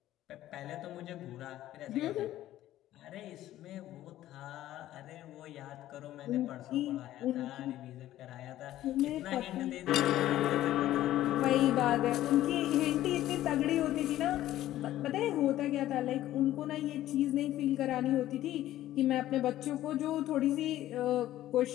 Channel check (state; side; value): quieter; right; 13.8 dB